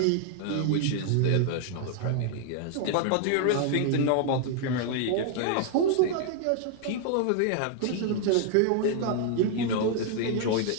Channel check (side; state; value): both; different; correlation 0.00